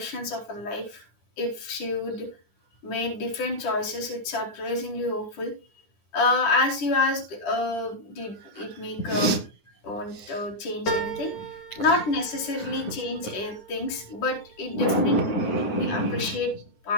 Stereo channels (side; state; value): right; late; 10 ms